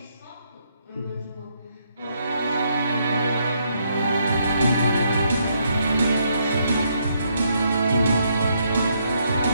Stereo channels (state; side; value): inverted; both; correlation -0.74